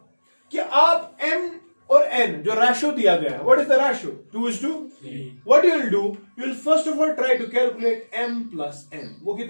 कि आप m और n जो रेशियो दिया गया है, what is the ratio, 2:3, what you will do, you will first of all try to calculate m plus n, वो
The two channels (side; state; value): both; inverted; correlation -1.00